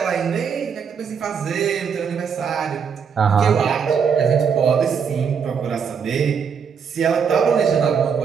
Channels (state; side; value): quieter; left; 6.7 dB